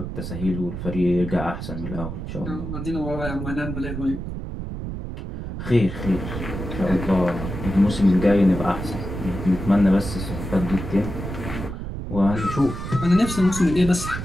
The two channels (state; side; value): noise; right; rumble, 7 dB below the sound